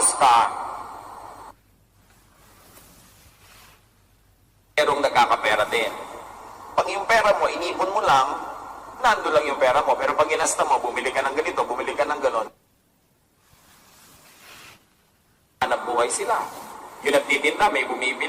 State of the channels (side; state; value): both; identical; correlation 1.00